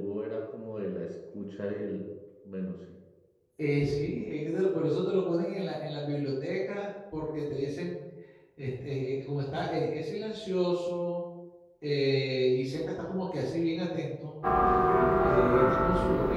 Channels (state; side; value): identical; both; correlation 1.00